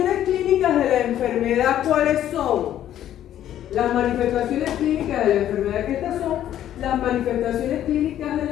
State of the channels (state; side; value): quieter; right; 11.5 dB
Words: clínicas de la enfermedad, ¿cuáles son? Las manifestaciones clínicas de la enfermedad, que estas son las manifestaciones clínicas de